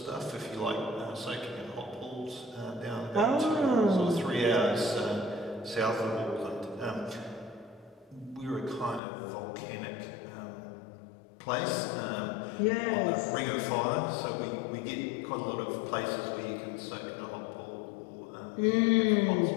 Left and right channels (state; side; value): drops out; right; at 9.0 s